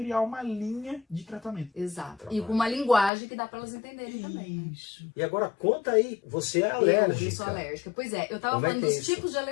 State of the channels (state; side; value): drops out; right; at 3.1 s